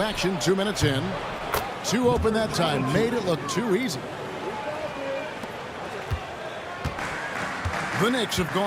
2 minutes in. 2 open that time, made it look too easy. The Knicks have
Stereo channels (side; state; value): both; identical; correlation 1.00